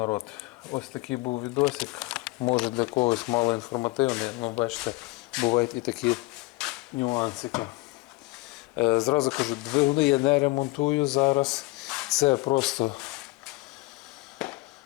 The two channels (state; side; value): quieter; right; 22.5 dB